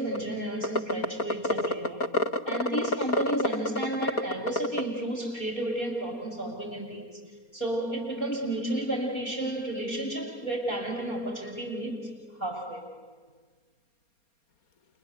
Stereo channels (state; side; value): late; right; 4.3 ms